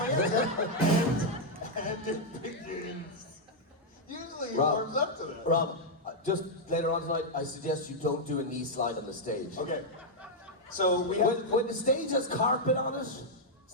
And it begins. Usually he Rob. warms up to that. Rob, just later on tonight, I suggest you don't do a knee slide on the stage. Okay. So we have. When the stage has carpet on it,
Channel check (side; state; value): both; normal; correlation -0.03